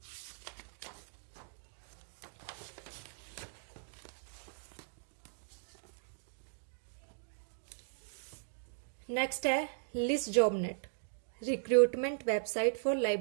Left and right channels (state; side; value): silent; left; digital silence